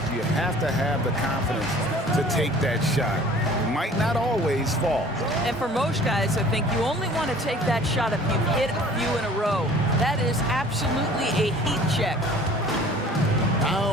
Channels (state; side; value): normal; both; correlation 0.49